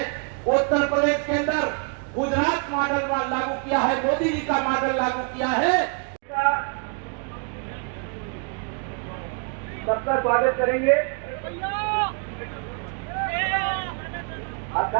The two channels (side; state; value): left; quieter; 37.0 dB